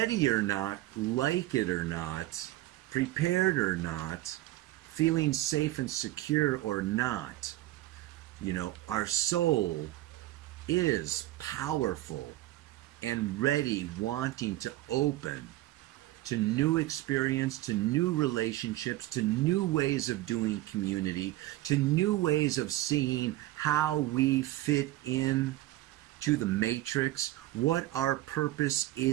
or not, like it or not, prepared or not, feeling safe and secure or not, you know, our soul is powerful and ready, wanting to open to new experience, to new relationships, to new ways of doing community, to new ways of seeing how we fit in to the matrix, what our purpose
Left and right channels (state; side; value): quieter; left; 16.6 dB